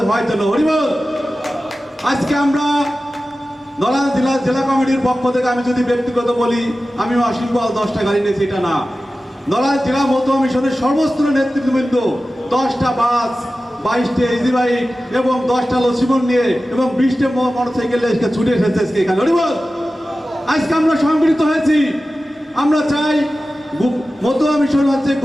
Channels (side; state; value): both; normal; correlation 0.95